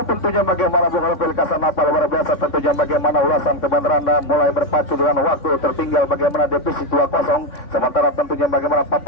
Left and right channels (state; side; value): late; right; 3.6 ms